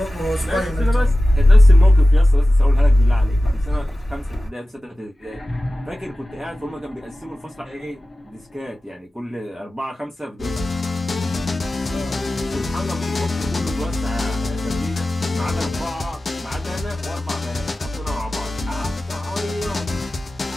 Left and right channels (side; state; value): both; normal; correlation 0.95